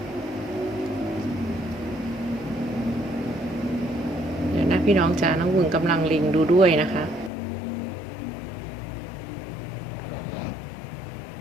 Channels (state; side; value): drops out; right; at 7.3 s